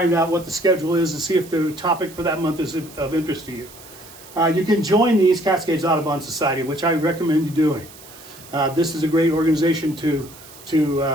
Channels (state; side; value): noise; right; hiss, 20 dB below the sound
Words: out what the schedule is and see if the topic for that month is of interest to you. You can join the East Cascades Audubon Society, which I recommend you doing. This is a great organization to